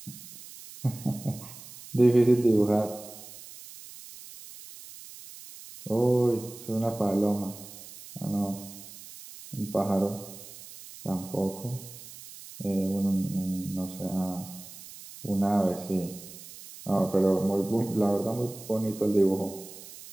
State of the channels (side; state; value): right; noise; hiss, 16 dB below the sound